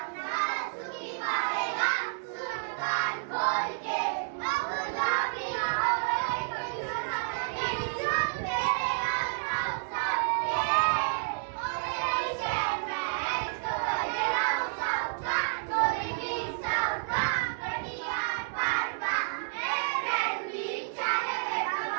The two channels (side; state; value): left; silent; digital silence